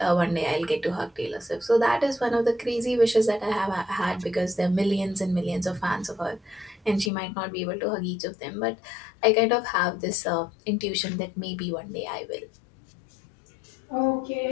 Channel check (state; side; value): drops out; right; at 7.1 s